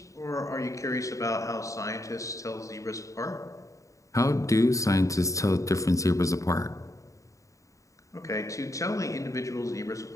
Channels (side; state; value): right; late; 0.16 ms